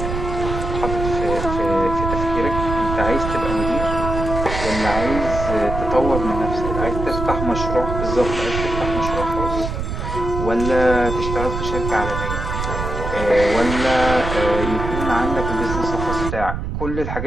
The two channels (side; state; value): right; noise; rumble, 4 dB below the sound